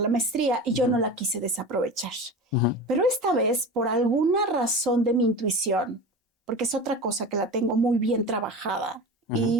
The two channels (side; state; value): both; normal; correlation 0.30